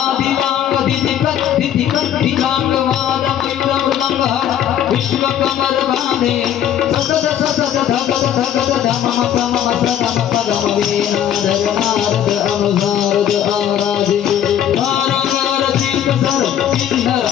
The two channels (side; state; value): right; quieter; 10.2 dB